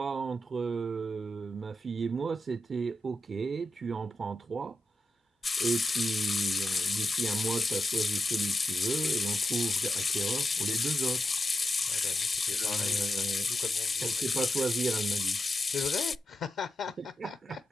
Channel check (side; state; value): both; normal; correlation 0.89